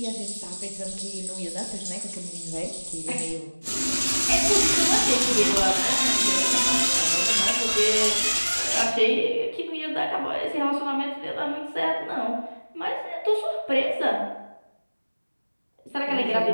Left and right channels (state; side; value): inverted; both; correlation -1.00